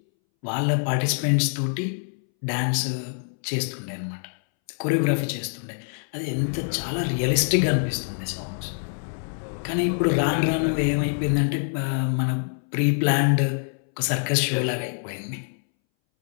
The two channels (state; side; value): silent; right; 62 dB below the other